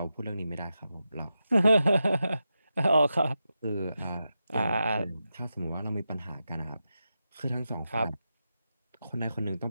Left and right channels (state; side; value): inverted; both; correlation -0.89